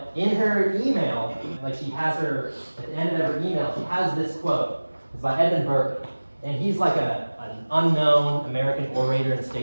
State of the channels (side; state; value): both; inverted; correlation -1.00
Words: in her email, like she has her, at the end of her email, she has this quote. It's by Edmund Burke. And he's like an unknown American orator and